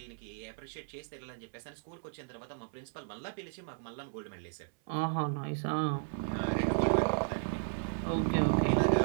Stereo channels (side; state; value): left; silent; 55 dB below the other